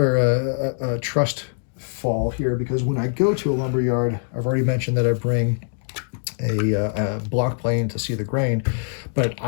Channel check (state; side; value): silent; right; digital silence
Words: a trust fall here, because when I go to a lumber yard, I've already mentioned that I bring a block plane to see the grain, but